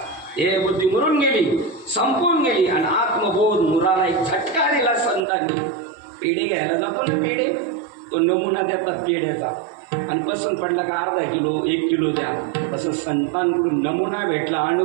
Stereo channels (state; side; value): drops out; left; at 5.2 s